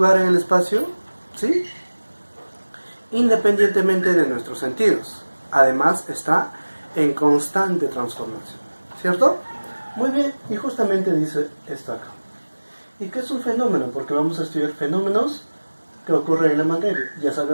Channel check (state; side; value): inverted; both; correlation -1.00